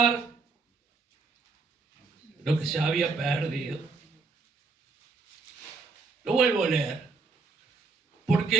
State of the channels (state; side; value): quieter; left; 4.3 dB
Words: lo que se había perdido. Lo vuelvo a leer. Porque